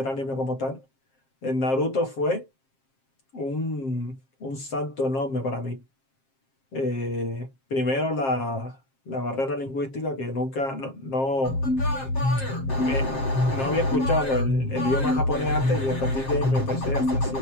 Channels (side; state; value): right; late; 7.5 ms